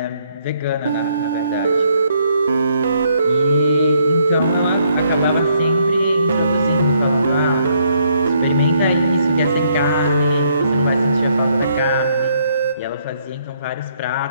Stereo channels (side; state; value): both; inverted; correlation -0.70